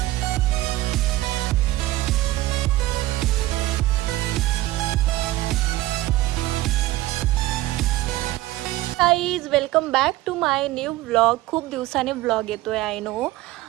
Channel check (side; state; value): left; quieter; 16.9 dB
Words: Guys welcome back to my new vlog. खूप दिवसाने व्लॉग येतोय आय नो,